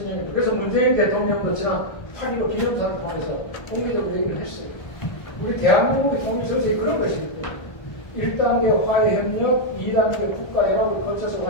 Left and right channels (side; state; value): right; late; 1.3 ms